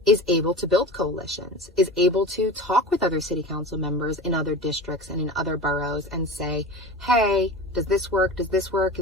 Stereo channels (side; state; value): both; normal; correlation 0.32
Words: is able to build coalitions, is able to talk with other city council members in other districts and in other boroughs and say, hey, does this work? Does this work?